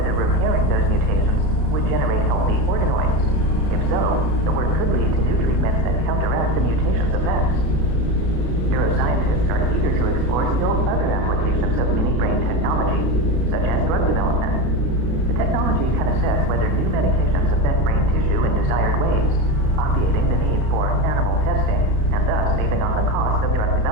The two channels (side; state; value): left; late; 32 ms